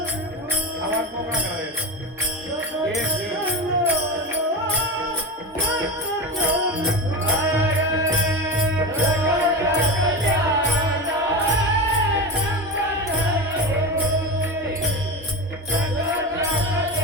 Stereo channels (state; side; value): normal; both; correlation 0.23